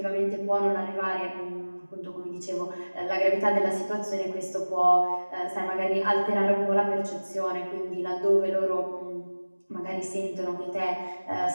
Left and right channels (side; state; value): both; inverted; correlation -1.00